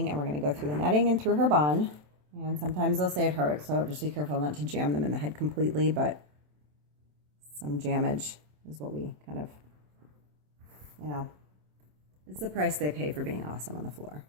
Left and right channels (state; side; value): late; left; 27 ms